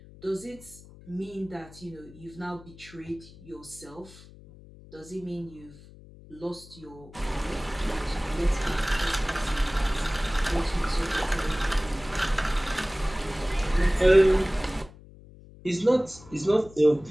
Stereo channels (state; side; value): noise; left; hum, 20 dB below the sound